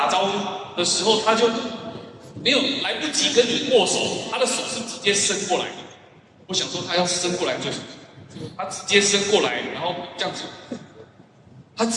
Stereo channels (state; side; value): identical; both; correlation 1.00